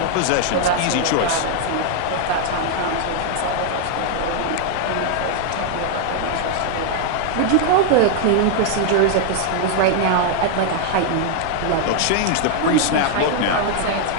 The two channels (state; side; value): different; both; correlation 0.00